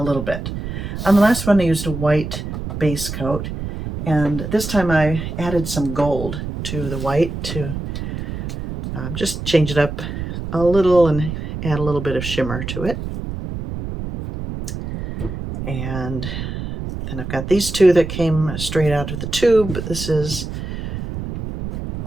little bit. On the last one I used a white base coat, and this time I added some gold to the white to just change it up a little and add a little bit of shimmer to it. And then I've got these two that came straight out of the tube. This is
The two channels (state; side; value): noise; right; rumble, 6 dB below the sound